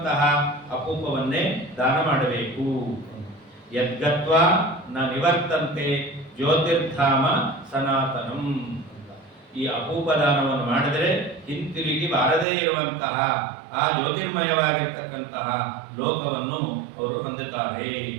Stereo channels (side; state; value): left; drops out; at 12.5 s